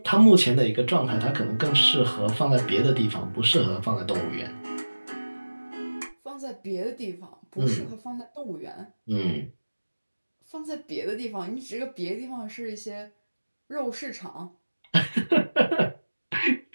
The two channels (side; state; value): both; inverted; correlation -1.00